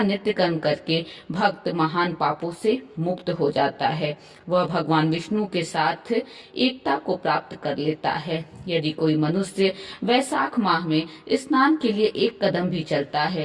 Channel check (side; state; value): both; identical; correlation 1.00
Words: नित्य कर्म करके भक्त महान पापों से मुक्त हो जाता है। वह भगवान विष्णु के साथ एकता को प्राप्त कर लेता है। यदि कोई मनुष्य वैशाख माह में स्नान के लिए एक कदम भी चलता